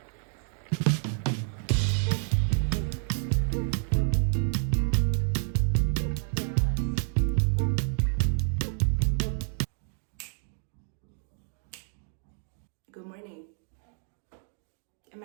Good morning. Am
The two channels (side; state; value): left; silent; 58 dB below the other